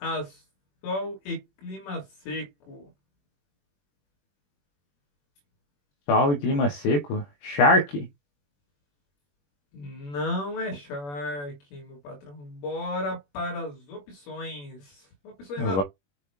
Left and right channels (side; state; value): right; late; 21 ms